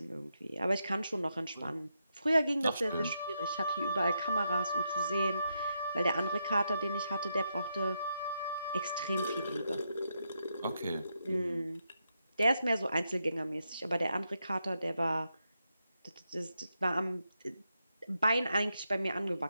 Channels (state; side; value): inverted; both; correlation -0.83